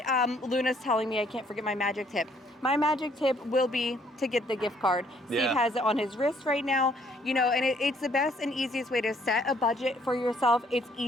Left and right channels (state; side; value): normal; both; correlation 0.65